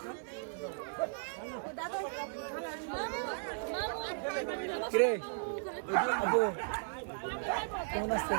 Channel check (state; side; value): silent; left; digital silence